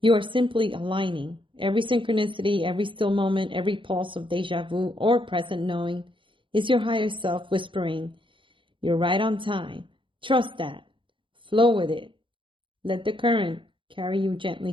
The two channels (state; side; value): late; left; 0.25 ms